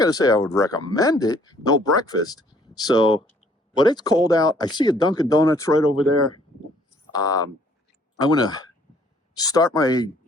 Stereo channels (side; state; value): both; normal; correlation 0.61